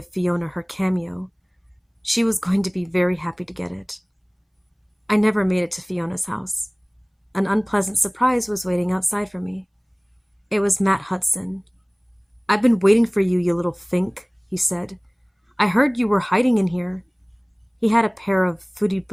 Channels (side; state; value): both; identical; correlation 1.00